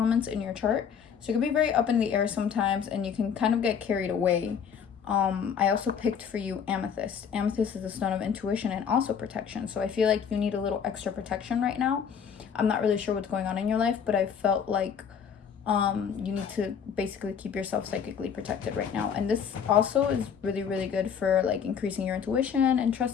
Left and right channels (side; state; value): right; quieter; 7.3 dB